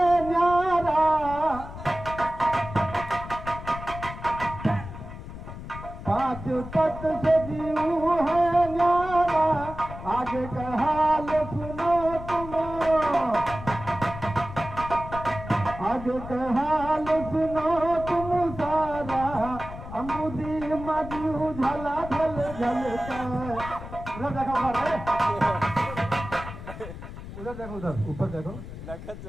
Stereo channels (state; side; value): noise; left; rumble, 11 dB below the sound